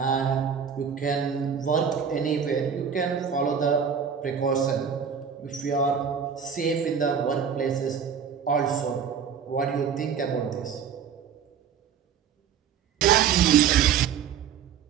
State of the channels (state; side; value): quieter; left; 7.5 dB